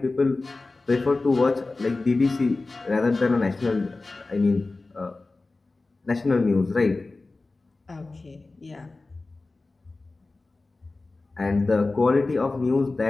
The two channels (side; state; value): right; quieter; 3.4 dB